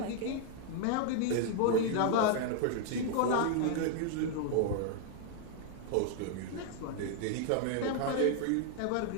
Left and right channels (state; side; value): different; both; correlation 0.00